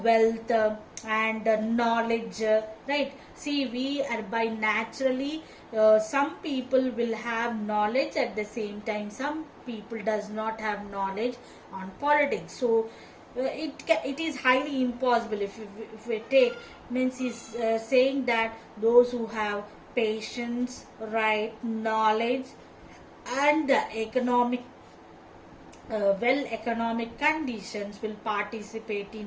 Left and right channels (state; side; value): identical; both; correlation 1.00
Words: wealth and knowledge, right? See, we are by naturally, some people will have knowledge, at the same time some people does not have knowledge on politics. So it is highly impossible. If we take, means he's saying that those who have patience, right, knowledge, and the economic conditions will participate